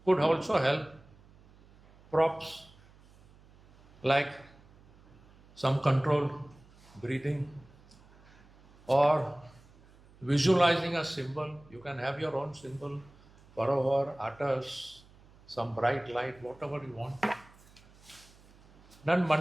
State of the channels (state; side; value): noise; right; hum, 26 dB below the sound